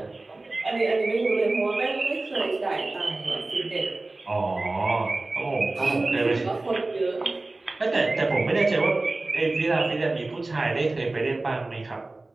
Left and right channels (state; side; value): quieter; left; 3.1 dB